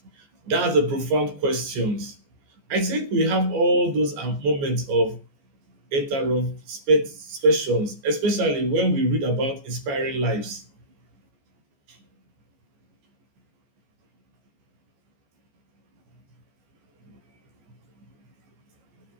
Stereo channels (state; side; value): late; left; 14 ms